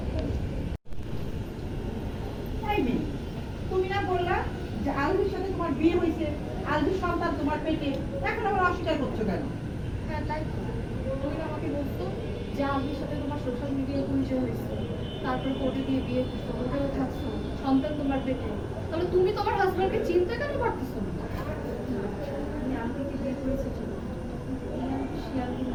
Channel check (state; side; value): identical; both; correlation 1.00